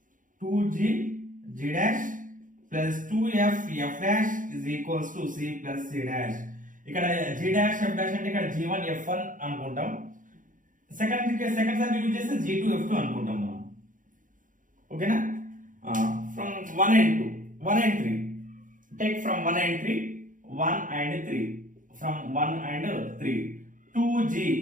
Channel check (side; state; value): left; late; 0.38 ms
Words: plus 2f f dash is equals to c plus c dash. ఇక్కడ g dash f dash అంటే ఇక్కడ g1 f1 అనుకుంటాం. Second circle use చేస్తే g2 f2 అనుకుంటాం మనం. ఓకేనా? From 1 and 2, 1 and 3. Take from 1 and 3, 1 and 3. From 1 and 3. 2g